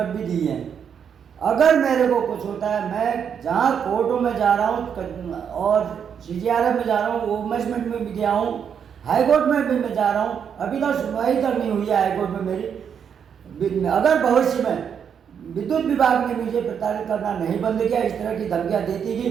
भी दी हैं। अगर मेरे को कुछ होता है, मैं जहाँ कोर्टों में जा रहा हूँ और CGRF में जा रहा हूँ, वुमेन्स में भी गया हूँ, हाई कोर्ट में भी मैं जा रहा हूँ, अभी तक सुनवाई तक नहीं हुई है हाई कोर्ट में मेरी। अगर भविष्य में विद्युत विभाग ने मुझे प्रताड़ित करना नहीं बंद किया, इस तरह की धमकियाँ देती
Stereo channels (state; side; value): quieter; left; 7.6 dB